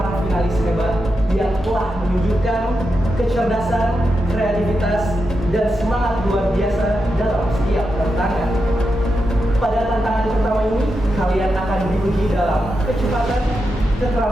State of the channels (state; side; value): normal; both; correlation 0.87